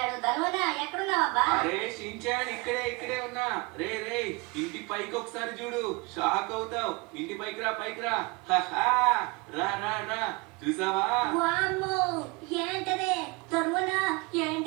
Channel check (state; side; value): quieter; left; 27.5 dB